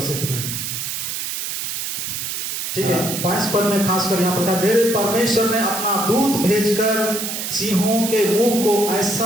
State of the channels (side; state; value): right; noise; hiss, 4 dB below the sound